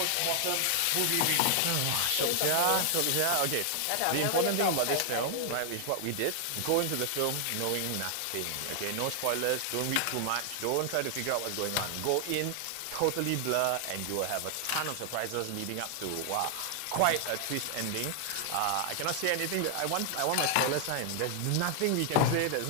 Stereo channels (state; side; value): different; both; correlation 0.00